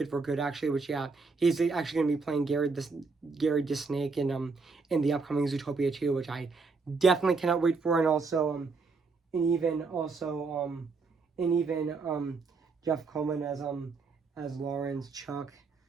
for Good, actually. Which yeah, he's actually going to be playing Gary Disnake in the upcoming Zootopia 2, which I definitely cannot wait for. And also and even Jeff Coleman as Lawrence, Chuck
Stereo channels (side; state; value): left; quieter; 4.4 dB